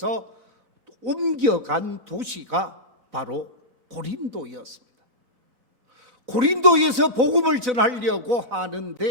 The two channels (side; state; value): left; late; 3.8 ms